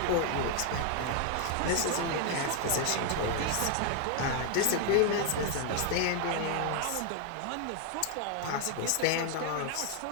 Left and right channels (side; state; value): both; different; correlation 0.00